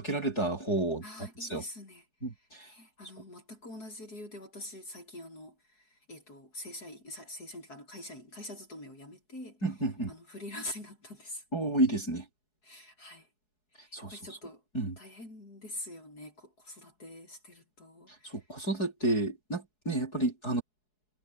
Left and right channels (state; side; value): late; right; 4.7 ms